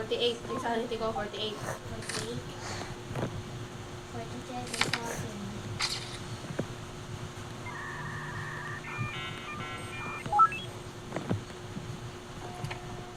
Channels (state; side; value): identical; both; correlation 1.00